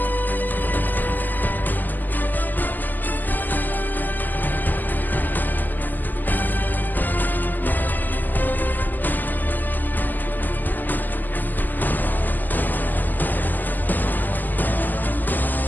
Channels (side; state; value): right; late; 0.086 ms